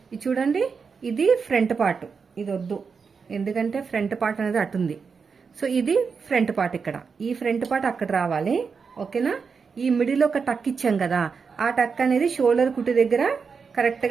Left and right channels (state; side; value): quieter; left; 5.5 dB